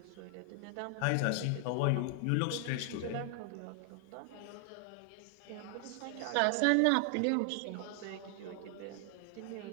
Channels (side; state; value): both; different; correlation 0.00